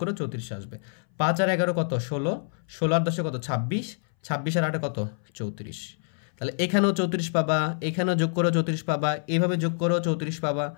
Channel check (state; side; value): silent; right; 59 dB below the other